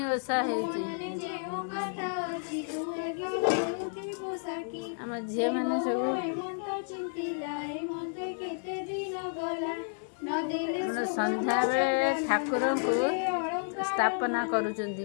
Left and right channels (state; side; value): silent; right; 57 dB below the other